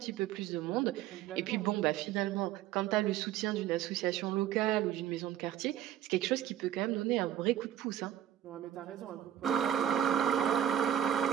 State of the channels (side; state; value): left; quieter; 10.9 dB